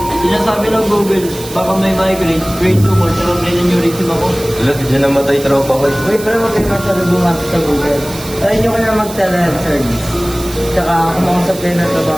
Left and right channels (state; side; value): noise; right; hiss, 14 dB below the sound